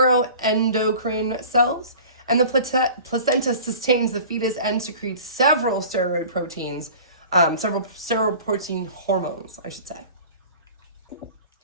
cells, and the placenta sustains the fetus and secretes several steroid proteins, several steroid protein hormones, I should say.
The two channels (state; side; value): inverted; both; correlation -0.42